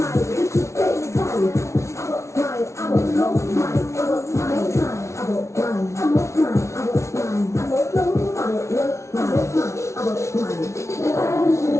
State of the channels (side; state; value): right; late; 0.13 ms